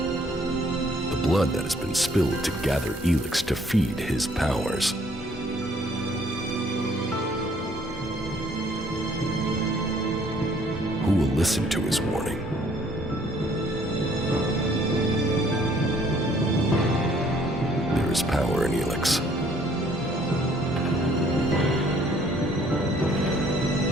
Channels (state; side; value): normal; both; correlation 0.62